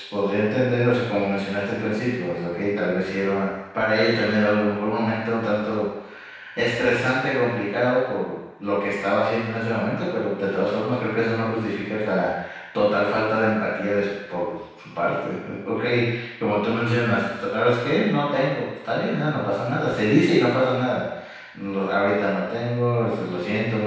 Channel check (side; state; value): both; identical; correlation 1.00